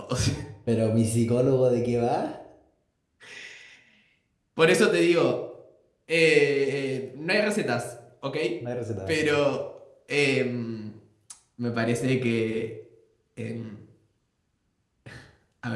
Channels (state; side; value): identical; both; correlation 1.00